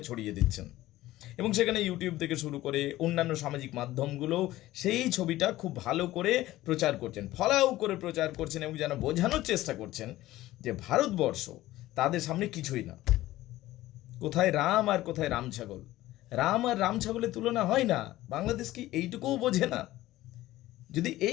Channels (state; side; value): quieter; right; 16.1 dB